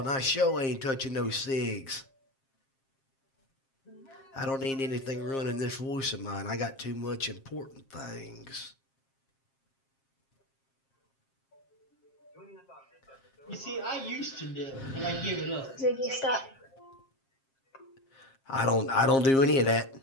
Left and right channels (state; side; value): late; right; 7.5 ms